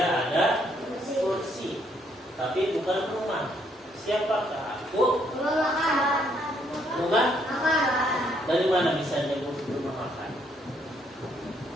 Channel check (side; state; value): both; normal; correlation 0.70